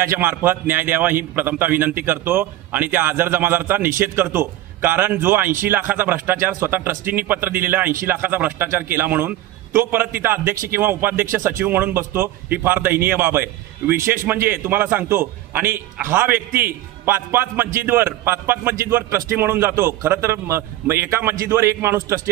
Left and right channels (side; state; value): left; quieter; 14.8 dB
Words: मार्फत न्याय द्यावा ही प्रथमतः विनंती करतो आणि त्या आझर जमादारचा निषेध करतो। कारण जो 80 लाखाचा भ्रष्टाचार स्वतः ट्रस्टींनी पत्र दिलेला 80 लाखाचा भ्रष्टाचार केला म्हणून तो परत तिथं अध्यक्ष किंवा उपाध्यक्ष सचिव म्हणून बसतो, ही फार दयनीय बाब आहे। विशेष म्हणजे तुम्हाला सांगतो, आणि हा व्यक्ती पाच मस्जिदवर ट्रस्टी म्हणून जातो। खरं तर एका मस्जिदवर एक माणूस